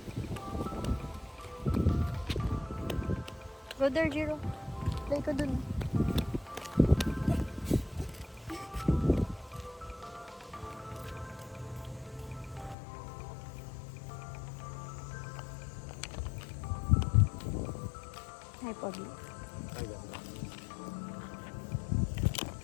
Go there, Jiro. Play ka dun. Hi, Pogi. Ay, ganda.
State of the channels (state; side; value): drops out; right; at 12.8 s